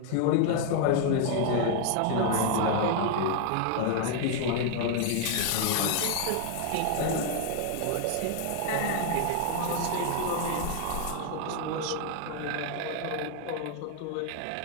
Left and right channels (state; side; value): different; both; correlation 0.00